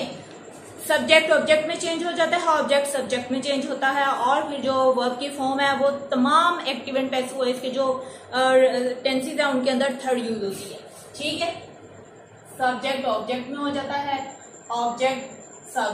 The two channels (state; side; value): identical; both; correlation 1.00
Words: सब्जेक्ट ऑब्जेक्ट में चेंज हो जाता है, ऑब्जेक्ट सब्जेक्ट में चेंज होता है, और फिर जो वर्ब की फॉर्म है वो तमाम एक्टिव एंड पैसिव वॉइस के जो टेंसेस है उनके अंदर थर्ड यूज होती है। ठीक है, सब्जेक्ट ऑब्जेक्ट में हो जाता है, ऑब्जेक्ट